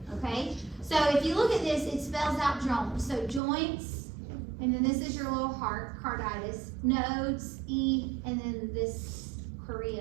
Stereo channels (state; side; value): drops out; left; at 3.4 s